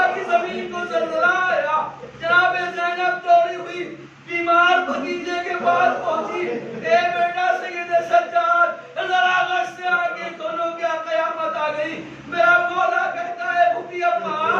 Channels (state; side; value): identical; both; correlation 1.00